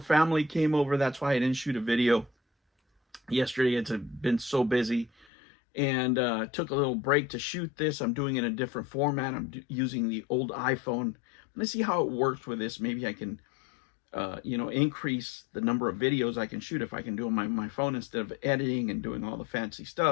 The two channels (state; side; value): drops out; right; at 5.2 s